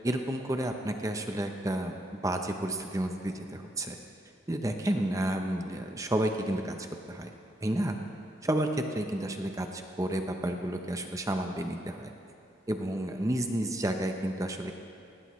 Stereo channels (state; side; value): normal; both; correlation 0.77